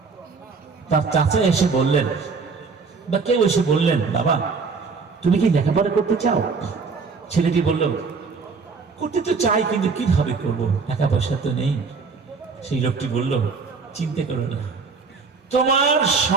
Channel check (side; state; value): left; quieter; 4.8 dB